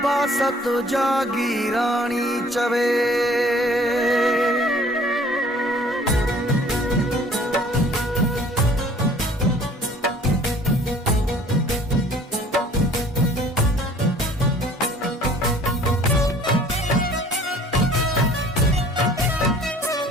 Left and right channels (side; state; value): both; normal; correlation 0.53